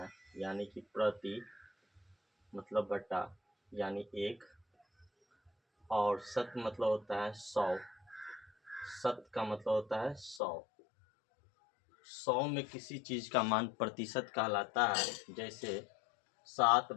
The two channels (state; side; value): drops out; right; at 10.4 s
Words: यानी कि प्रति मतलब बटा यानी एक, और शत मतलब होता है 100। शत का मतलब होता है 100। 100 में किसी चीज़ का मान प्रतिशत कहलाता है। जैसे